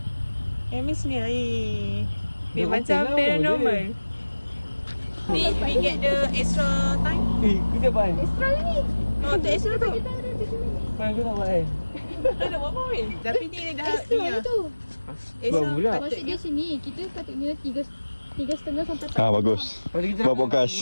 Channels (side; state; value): both; inverted; correlation -1.00